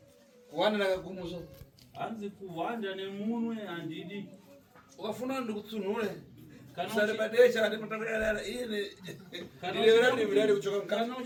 kuwanda ndakakumusa hanzi kuhwanda nemunwe handidi ukafuna ndikutsunhure Kana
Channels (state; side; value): identical; both; correlation 1.00